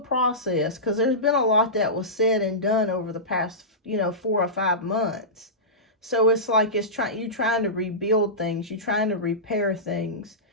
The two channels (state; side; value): normal; both; correlation -0.17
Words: because there's been a lot that was said and done over the past, 4 or 5 months. So it's like you're trying to rebuild things, you're trying to repair things.